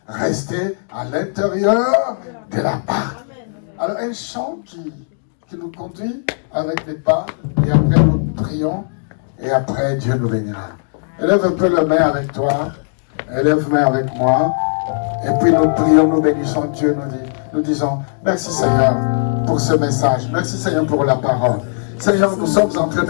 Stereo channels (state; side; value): silent; right; digital silence